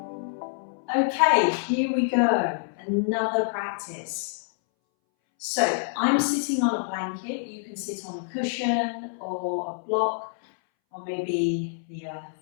Okay, here we go. Another practice. So I'm sitting on a blanket. You can sit on a cushion or a block or maybe the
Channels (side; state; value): right; silent; 60 dB below the other